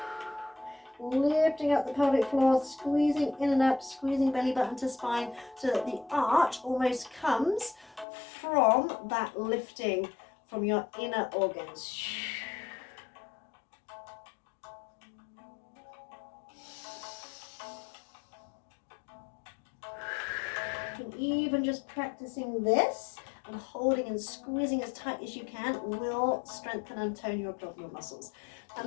Lifting up the pelvic floor, squeezing in and up, squeezing belly button to spine so that the arch almost comes from that lifting from your inner organs. And even just practicing this and holding and squeezing as tight as you can will strengthen and tone your abdominal muscles.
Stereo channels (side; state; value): right; drops out; at 8.1 s